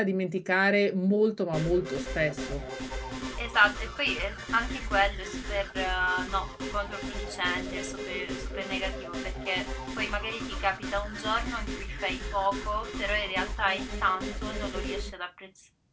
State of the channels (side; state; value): both; identical; correlation 1.00